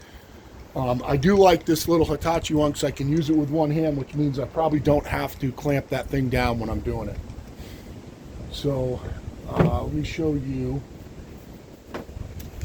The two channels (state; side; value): identical; both; correlation 1.00